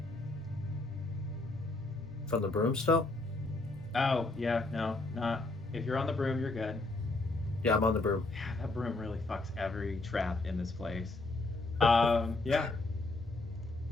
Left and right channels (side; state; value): right; quieter; 3.1 dB